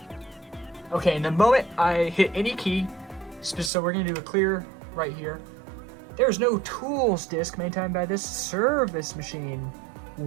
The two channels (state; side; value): drops out; left; at 3.7 s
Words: Okay, and the moment I hit any key, so we're gonna do a clear right here. There's no tools disk maintained by this service machine.